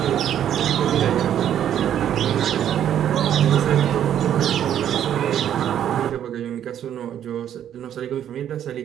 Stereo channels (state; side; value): quieter; left; 10.2 dB